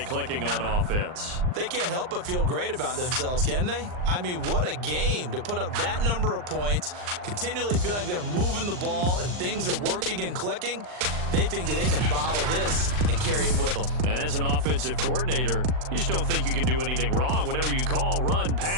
clicking on offense. They can't help but feel great about themselves, can they? I mean, what a game to put up that number of points, continually feel like they're moving the ball and things are working and clicking. They think that they can bottle this and carry it with them. And as an offensive coordinator, you just don't think you can do anything wrong. Whatever you call, run,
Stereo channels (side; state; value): left; late; 39 ms